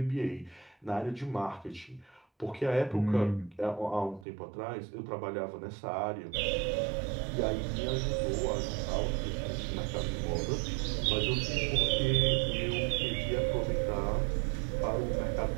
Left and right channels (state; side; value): drops out; left; at 4.2 s